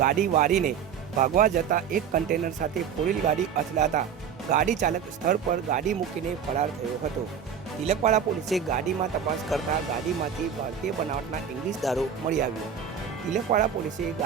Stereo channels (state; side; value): quieter; left; 7.8 dB